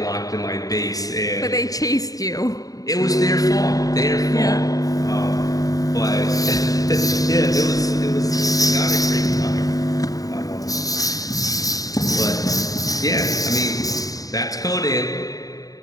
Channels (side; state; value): right; late; 0.18 ms